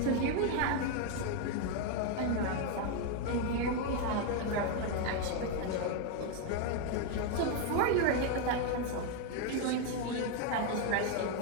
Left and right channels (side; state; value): both; different; correlation 0.01